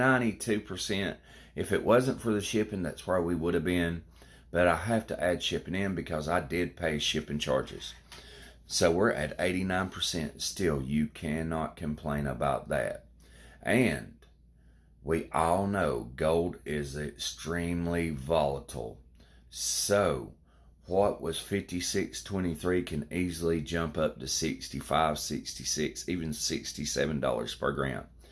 If it wasn't for the shipping, that's where we would have been. But I have to add shipping in because I did pay shipping charges. So we're at 89%. Still, you cannot complain about that. And we all know gold is extremely volatile. So what was 56.23 can easily jump up to 65, 66, even $67 per gram.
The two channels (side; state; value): both; identical; correlation 1.00